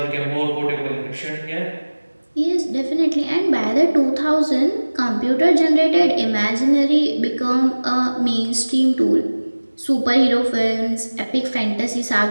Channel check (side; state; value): both; inverted; correlation -1.00